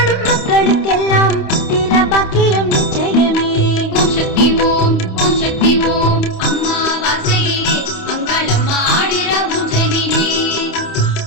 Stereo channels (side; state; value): right; late; 28 ms